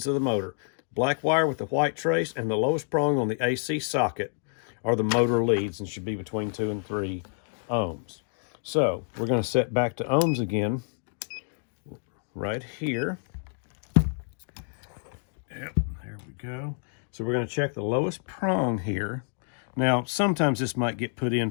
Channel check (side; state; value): right; silent; 59 dB below the other